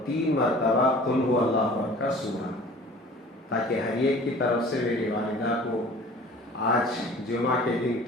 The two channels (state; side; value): normal; both; correlation 0.46